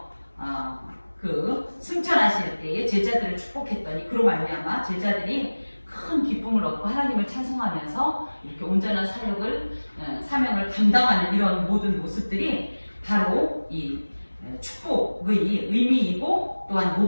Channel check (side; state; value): both; inverted; correlation -1.00